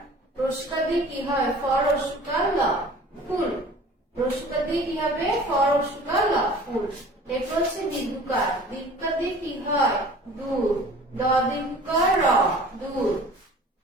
রস্যুকার দিয়ে কি হয়? ফ রস্যুকার ল, ফুল। রস্যুকার দিয়ে কি হবে? ফ রস্যুকার ল, ফুল। এটা হচ্ছে দীর্ঘিকার। দীর্ঘিকার দিয়ে কি হয়? দূর। দ দীর্ঘিকার র, দূর।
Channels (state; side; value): normal; both; correlation 0.45